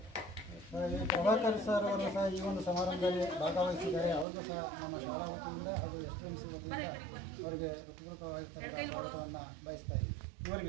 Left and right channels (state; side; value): drops out; left; at 4.2 s